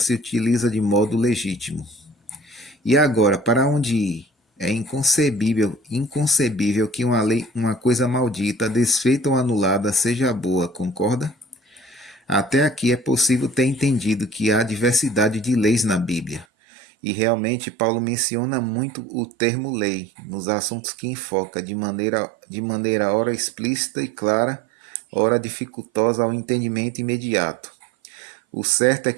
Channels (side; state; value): left; drops out; at 16.4 s